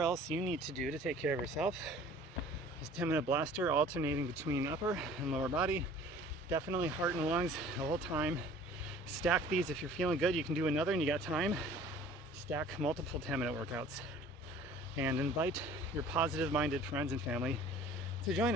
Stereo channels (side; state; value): both; normal; correlation 0.48